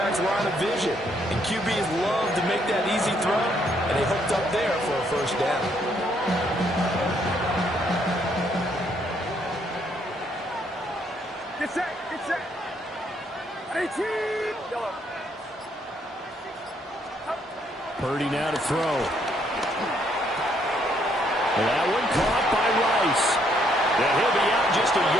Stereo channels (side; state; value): both; normal; correlation 0.71